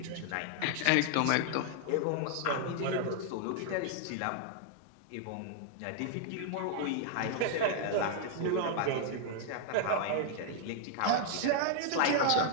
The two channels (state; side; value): different; both; correlation 0.00